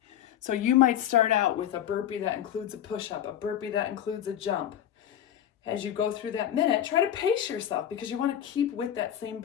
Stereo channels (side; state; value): right; quieter; 10.6 dB